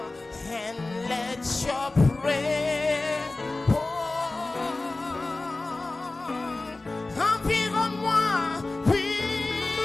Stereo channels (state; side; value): quieter; right; 3.1 dB